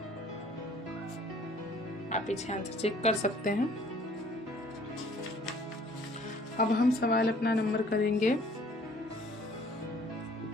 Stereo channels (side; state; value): both; normal; correlation 0.56